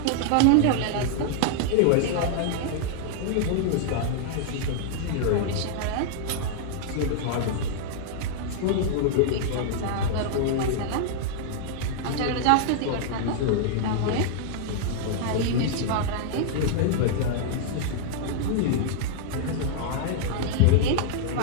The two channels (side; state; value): both; different; correlation -0.01